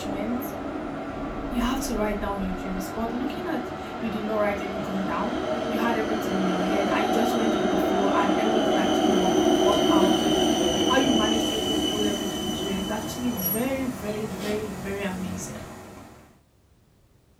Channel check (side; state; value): both; identical; correlation 1.00